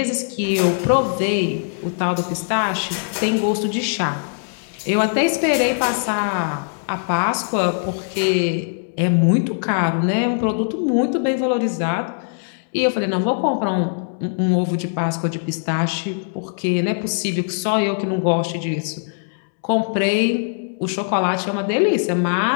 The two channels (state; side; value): silent; right; digital silence